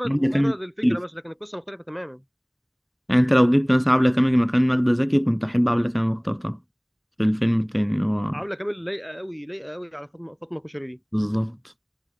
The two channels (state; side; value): identical; both; correlation 1.00